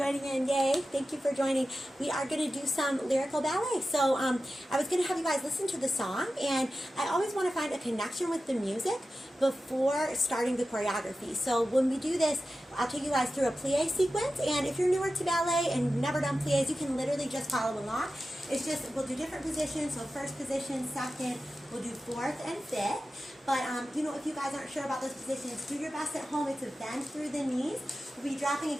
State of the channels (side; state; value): both; normal; correlation 0.93